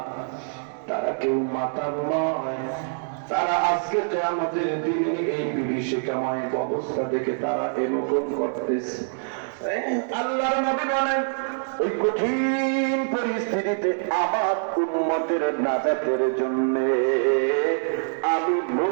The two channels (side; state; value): left; silent; digital silence